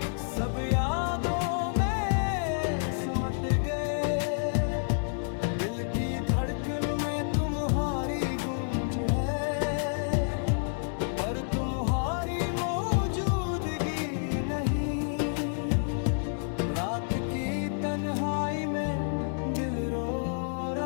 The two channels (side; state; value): right; silent; digital silence